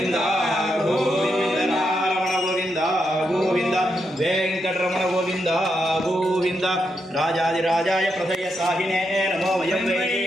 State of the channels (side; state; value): both; normal; correlation 0.82